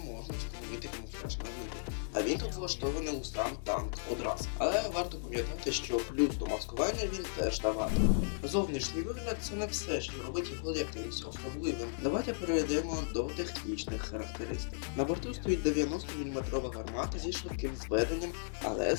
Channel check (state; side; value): silent; right; 54 dB below the other